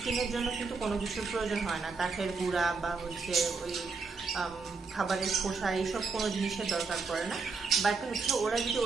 জন্য কিন্তু কোনো কিছুর প্রয়োজন হয় না, কাঠের গুঁড়া বা হচ্ছে ওই খাবারের খোসা এইসব কোনো জিনিসের দরকার পড়ে না। বাট হচ্ছে ওরা যদি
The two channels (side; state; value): left; quieter; 4.5 dB